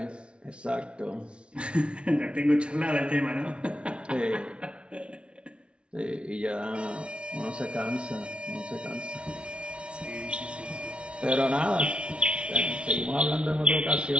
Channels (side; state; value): left; late; 0.058 ms